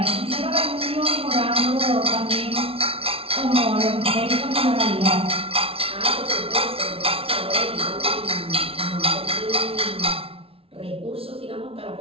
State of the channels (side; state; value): left; late; 0.27 ms